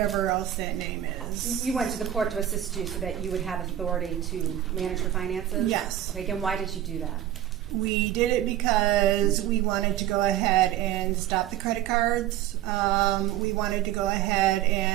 else that name is. You went to the court to assist you so that you would have authority to manage her finances? Yes. Okay, again, why did you do that? We did it because we wanted to go ahead and stop the credit cards. We wanted to go ahead,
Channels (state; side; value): quieter; left; 12.3 dB